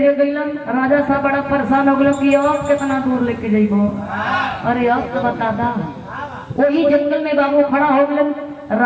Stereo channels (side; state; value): both; identical; correlation 1.00